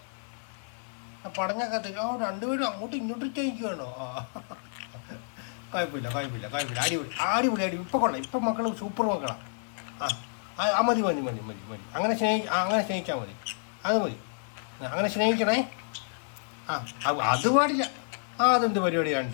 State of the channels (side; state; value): right; silent; 58 dB below the other